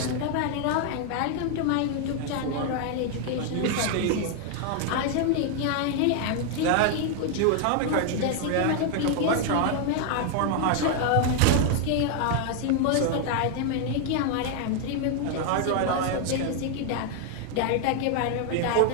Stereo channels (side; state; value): both; different; correlation 0.00